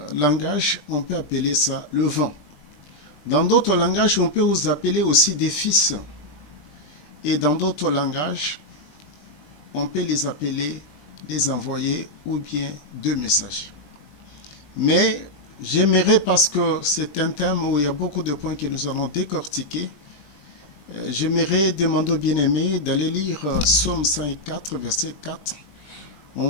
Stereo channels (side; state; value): right; late; 20 ms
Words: langages, on peut appeler ça le vent. Dans d'autres langages, on peut vous appeler aussi des fils. Et dans d'autres langages, on peut les appeler des envoyés ou bien deux messages. Mais j'aimerais, parce que c'est un thème où il y a beaucoup de points que nous allons décortiquer, j'aimerais demander aux bien-aimés d'aller lire Psaume 104, verset 4.